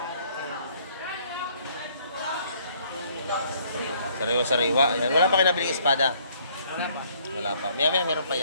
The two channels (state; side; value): inverted; both; correlation -0.63